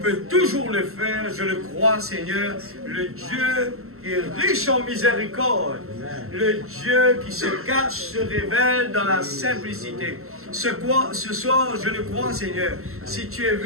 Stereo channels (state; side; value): late; left; 0.63 ms